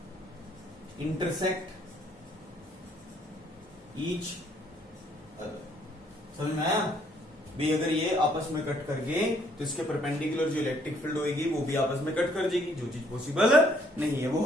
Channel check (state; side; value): normal; both; correlation 0.65